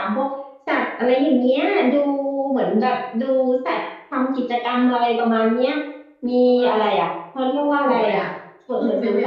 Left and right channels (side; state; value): both; identical; correlation 1.00